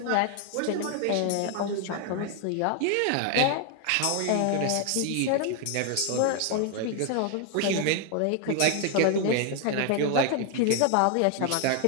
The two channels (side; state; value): both; different; correlation 0.00